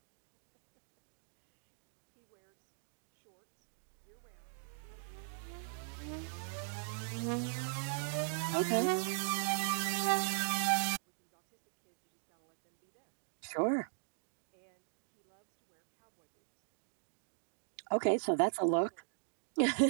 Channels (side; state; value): left; silent; digital silence